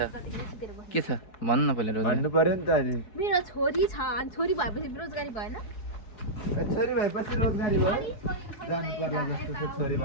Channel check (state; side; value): late; right; 4.7 ms